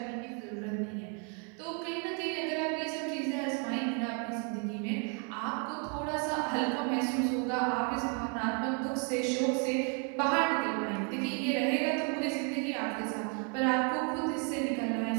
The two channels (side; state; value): left; quieter; 38.1 dB